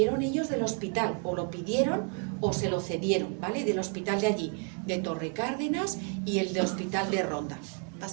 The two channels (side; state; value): left; quieter; 39.9 dB